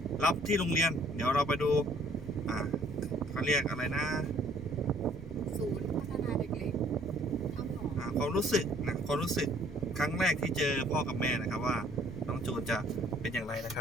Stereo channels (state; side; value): normal; both; correlation 0.59